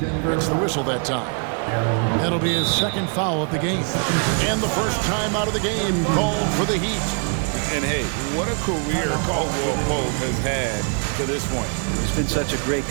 gets the whistle that time. That'll be his 2nd foul of the game. And the first time out of the game called for the Heat. And hey, what a career Caldwell Pope has had to this point. He's been such a great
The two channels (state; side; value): quieter; left; 40.0 dB